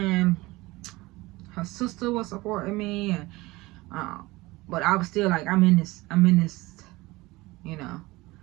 her sister was supporting me, and but I was still like, I'm in this, I'm in this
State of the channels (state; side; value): quieter; left; 20.9 dB